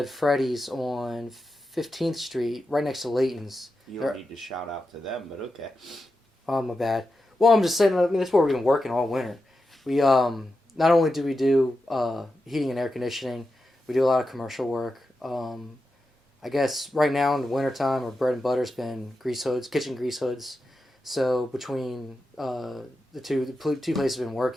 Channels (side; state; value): both; normal; correlation 0.90